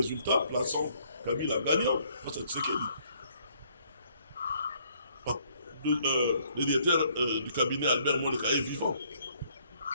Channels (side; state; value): both; inverted; correlation -0.65